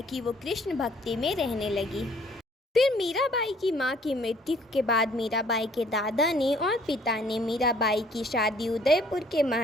कि वो कृष्ण भक्ति में रहने लगी। फिर मीराबाई की माँ की मृत्यु के बाद मीराबाई के दादा ने और पिता ने मीराबाई की शादी उदयपुर के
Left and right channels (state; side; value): normal; both; correlation 0.59